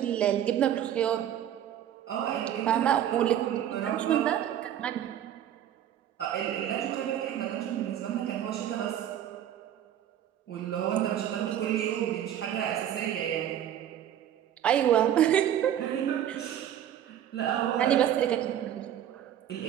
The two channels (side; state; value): left; quieter; 10.7 dB